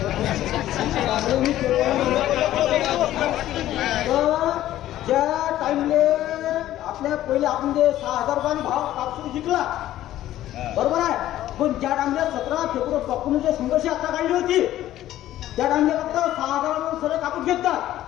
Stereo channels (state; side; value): quieter; right; 13.6 dB